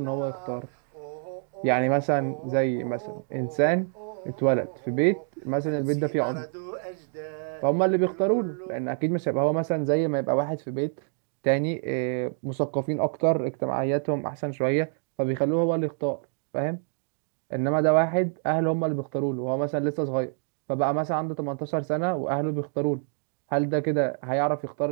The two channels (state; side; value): silent; left; 60 dB below the other